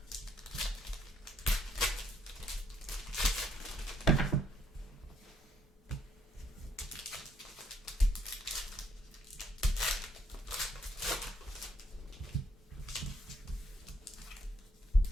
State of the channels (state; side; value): normal; both; correlation 0.71